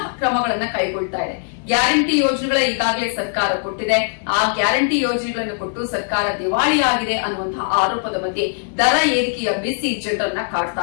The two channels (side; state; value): right; silent; 66 dB below the other